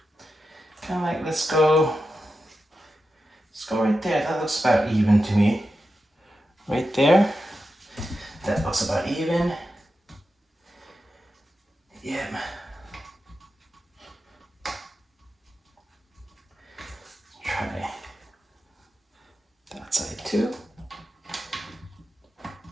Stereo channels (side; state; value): both; normal; correlation 0.90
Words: Kind of like, let's go right there. That looks about even to me. Right there. That looks about even. Yeah. Try that side too.